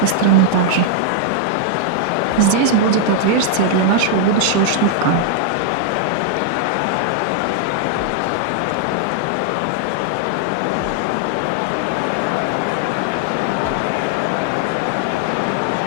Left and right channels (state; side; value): different; both; correlation -0.01